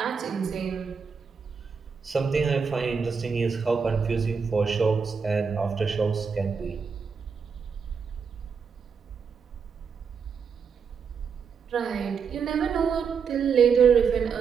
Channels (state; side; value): quieter; left; 6.0 dB